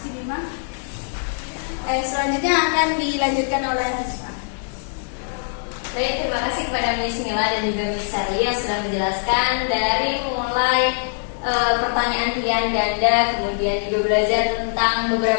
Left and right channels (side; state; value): right; silent; 64 dB below the other